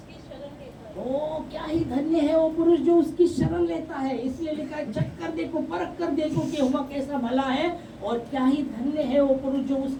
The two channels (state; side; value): identical; both; correlation 1.00